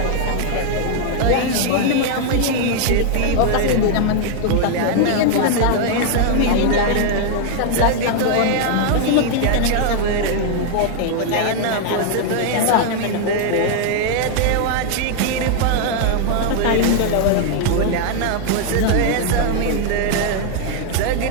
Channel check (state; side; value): different; both; correlation 0.00